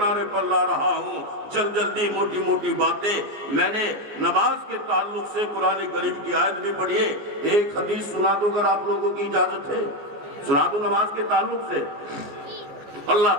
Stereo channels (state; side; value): late; left; 14 ms